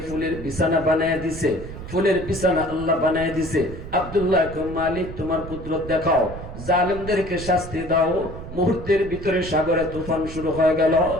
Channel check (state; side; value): noise; right; rumble, 11 dB below the sound